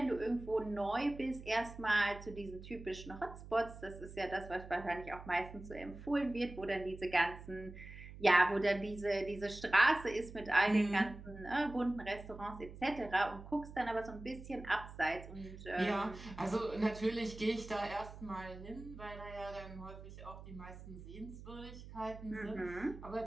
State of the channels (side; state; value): right; noise; hum, 14 dB below the sound